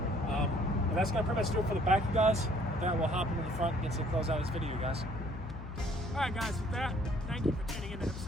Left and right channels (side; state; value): left; noise; hum, 9 dB below the sound